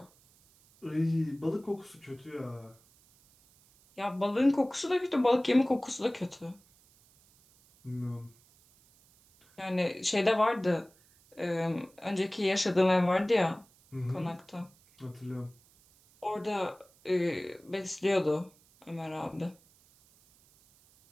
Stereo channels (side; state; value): right; noise; hiss, 30 dB below the sound